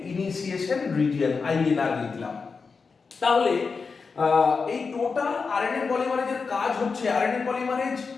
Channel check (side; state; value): right; quieter; 4.9 dB